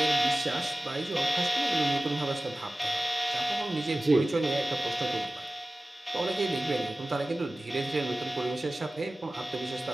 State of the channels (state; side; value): normal; both; correlation 0.96